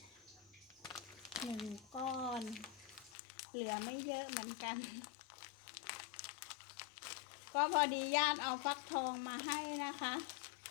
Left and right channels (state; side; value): drops out; right; at 3.1 s